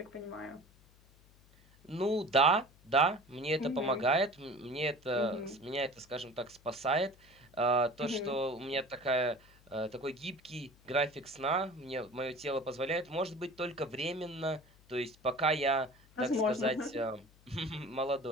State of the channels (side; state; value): left; noise; hum, 27 dB below the sound